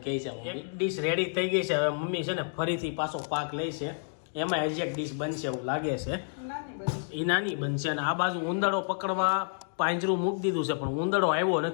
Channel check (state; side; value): silent; right; digital silence